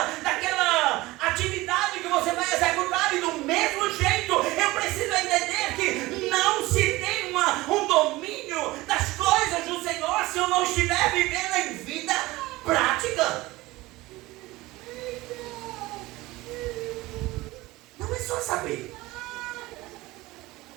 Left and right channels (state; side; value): quieter; left; 19.6 dB